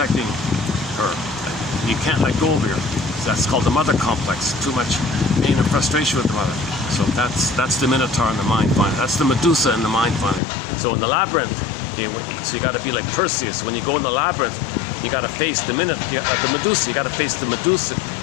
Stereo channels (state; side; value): drops out; right; at 10.4 s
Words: her. You can't let go of her. That's called the mother complex. Too much pain and frustration with the mother. So that's the Minotaur in the mind finding. That's the Medusa in the mind finding. So in the labyrinth, so you got to be like Perseus. When you go in the labyrinth, you got to face the Medusa. You got to face the Medusa.